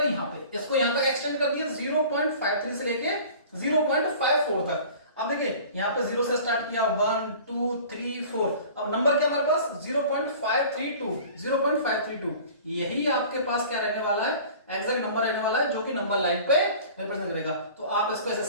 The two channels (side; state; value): both; inverted; correlation -0.44